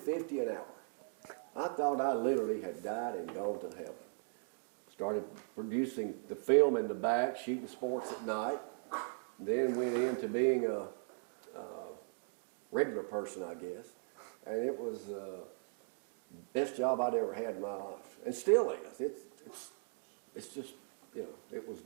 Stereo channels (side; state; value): left; silent; digital silence